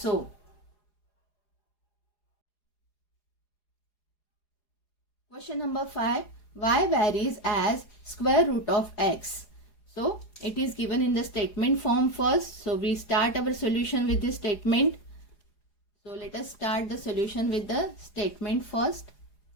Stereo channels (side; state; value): right; late; 4.9 ms